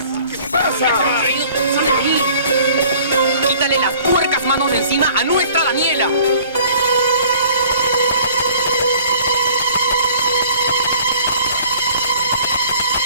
¿Qué pasa? ¡Sale de ahí! ¡Quítale las puercas manos de encima a nuestra Daniela!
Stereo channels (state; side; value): inverted; both; correlation -0.53